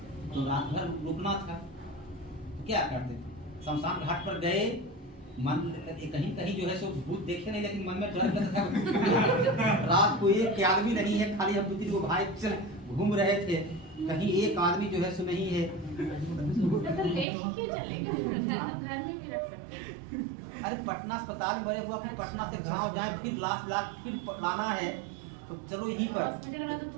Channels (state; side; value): drops out; left; at 17.2 s